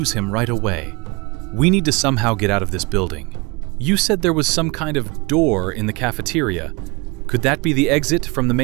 him right away. We need to somehow get out of this building. You said there was some kind of door in the cafeteria. Could that be the exit from the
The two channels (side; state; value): left; quieter; 27.0 dB